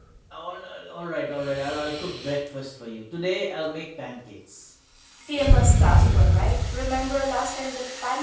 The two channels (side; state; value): both; identical; correlation 1.00